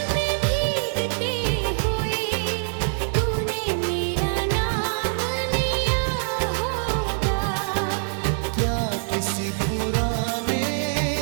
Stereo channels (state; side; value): silent; left; digital silence